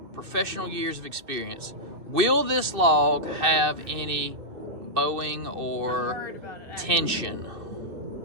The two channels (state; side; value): late; left; 2.6 ms